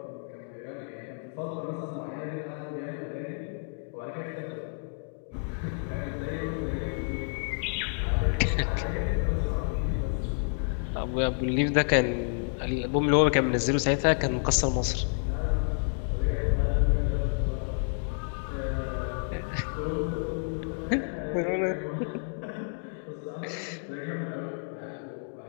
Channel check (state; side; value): silent; right; 58 dB below the other